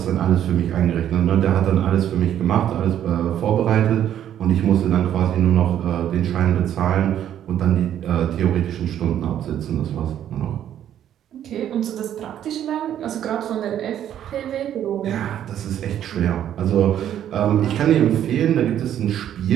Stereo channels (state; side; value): quieter; left; 10.6 dB